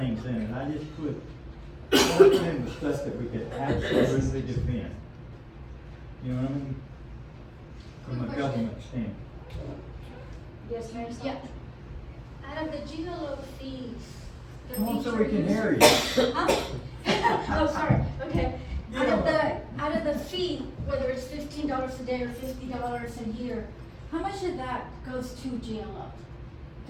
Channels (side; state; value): both; identical; correlation 1.00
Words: in it, I just put in the stuff that we could absolutely defend. You know what I mean? From a government standpoint. Yes, Mary? Yeah. Out of the GLO fees. the Come on, so fees we are can used- hear you. Huh? Oh, sorry, okay. Out of the fee, whether it's $15 a day or $50 a year, how much of that goes to GLO?